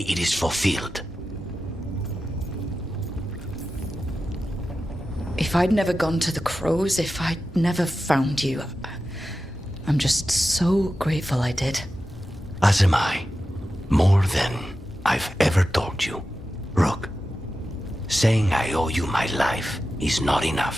it is fulfilled. If I'd never gone to the Crows, if I'd never found you, I'm just so grateful I did. As am I. More than I've ever told you. Rook, saying I owe you my life is not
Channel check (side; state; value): both; normal; correlation 0.92